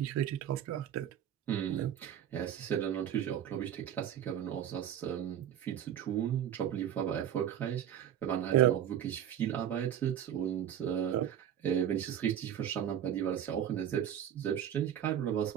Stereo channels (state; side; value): quieter; left; 10.0 dB